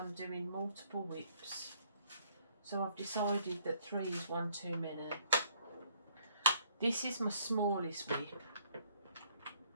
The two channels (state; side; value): inverted; both; correlation -0.65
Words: doing multiple whips. So I've decided that 3 is one too many. This is my smallest whip.